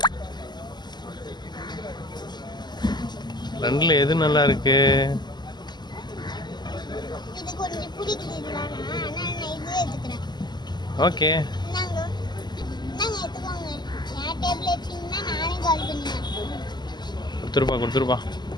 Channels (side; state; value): right; late; 0.21 ms